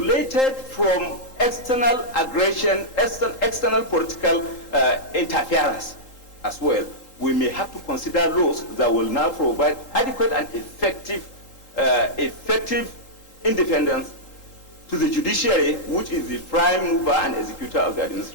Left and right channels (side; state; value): right; late; 3.8 ms